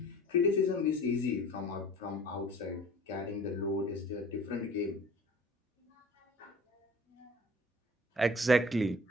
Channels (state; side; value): normal; both; correlation 0.46